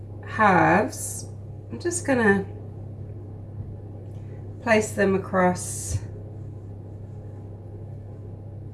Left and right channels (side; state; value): both; identical; correlation 1.00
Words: halves, I'm just going to place them across